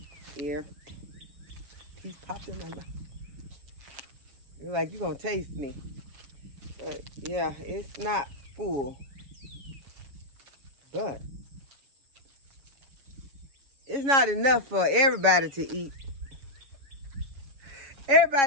ear. Piece popped in my mouth. You're like, you're gonna taste me. But yeah, it's not full. But it's not enough for everybody to eat.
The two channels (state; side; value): late; left; 7.2 ms